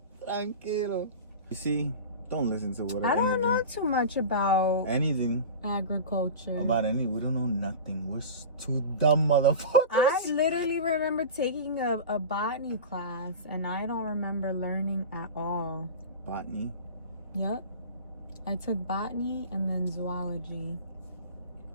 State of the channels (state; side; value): inverted; both; correlation -0.31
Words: Tranquilo. You see, don't listen to what I don't know too much about anything. Agriculture. About any, we don't know nothing. We're two dumb motherfuckers. I literally remember taking a botany class, and I don't remember learning at all. Botany? Yep. I took botany and then zoology.